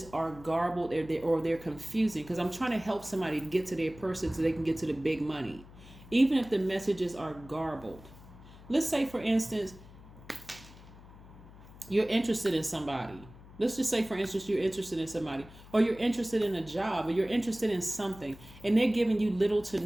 are garbled or they're confusing, because I'm trying to help somebody to get to their person so they can get to the big money. Even if the messages are garbled. Let's say, for instance, you're interested in somebody. Let's just say, for instance, you're interested in somebody, or you're interested in a job, or you're interested in something, and they're giving you little to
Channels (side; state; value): left; noise; hum, 19 dB below the sound